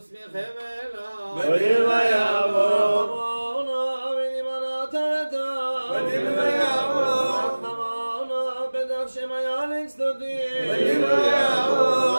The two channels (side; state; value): both; inverted; correlation -1.00